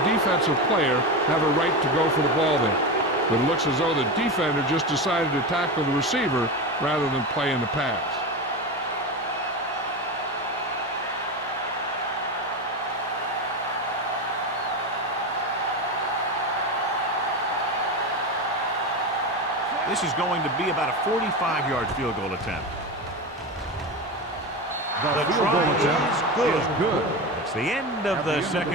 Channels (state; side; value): normal; both; correlation 0.20